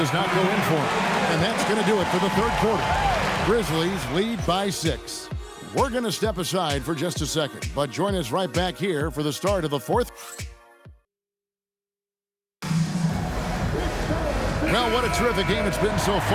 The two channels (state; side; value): identical; both; correlation 1.00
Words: not go in for him. And that's going to do it for the third quarter. Grizzlies lead by 6. We're going to step aside for just a second, but join us right back here for the start of the fourth. Well, what a terrific game it's been so